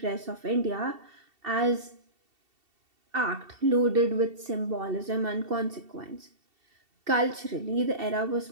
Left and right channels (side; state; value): left; late; 2.7 ms